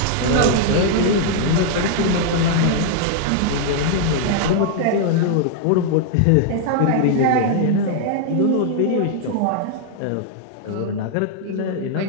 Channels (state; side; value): different; both; correlation -0.01